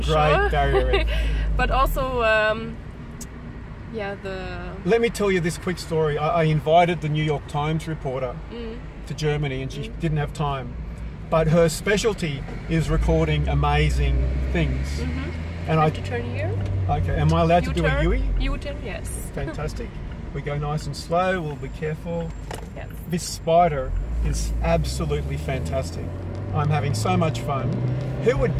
The Great Barrier Reef. But also, yeah, the... Let me tell you this quick story. I invited the New York Times reporter to Germany, and she didn't have time. But her specialty is recording amazing things. And I have to turn here. Okay, am I allowed to do a U-turn? U-turn, yes. Fantastic. We go nice and slow, we'll be careful. Yes. This Spyder is absolutely fantastic. I'm having so much fun. Who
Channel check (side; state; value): both; identical; correlation 1.00